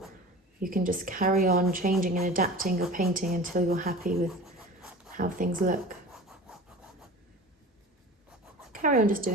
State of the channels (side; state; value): both; normal; correlation 0.37